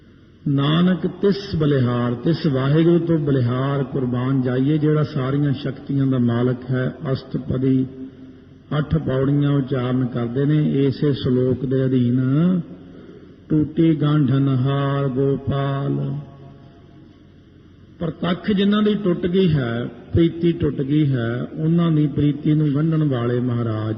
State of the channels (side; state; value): both; identical; correlation 1.00